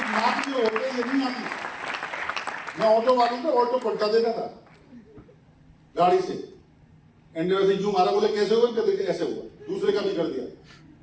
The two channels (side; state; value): both; identical; correlation 1.00